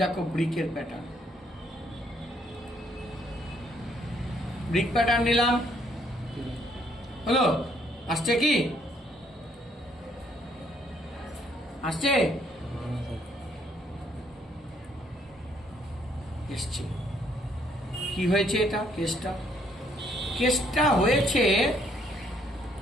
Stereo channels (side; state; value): both; normal; correlation 0.68